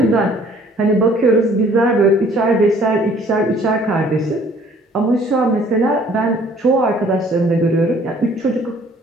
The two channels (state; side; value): normal; both; correlation 0.57